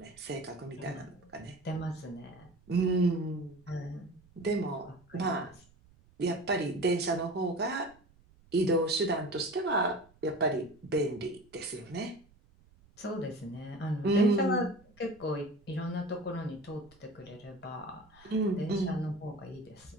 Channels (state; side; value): noise; right; rumble, 28 dB below the sound